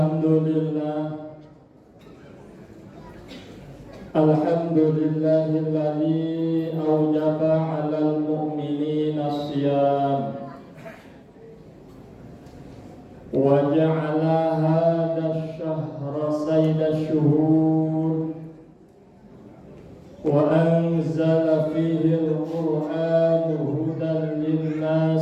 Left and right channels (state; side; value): identical; both; correlation 1.00